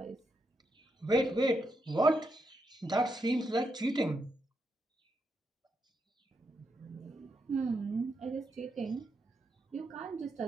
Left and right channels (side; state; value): both; normal; correlation 0.82